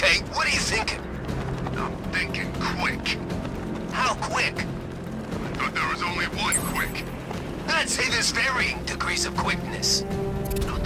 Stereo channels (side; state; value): both; identical; correlation 1.00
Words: what are you thinking? I'm thinking quick. How quick? But there is only one quick. I'd say there's varying degrees of quickness.